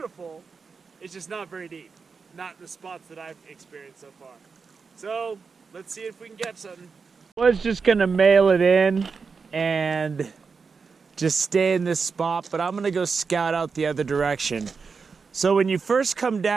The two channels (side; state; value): left; quieter; 5.1 dB